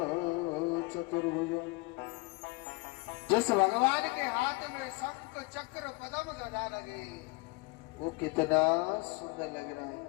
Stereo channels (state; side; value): quieter; right; 24.1 dB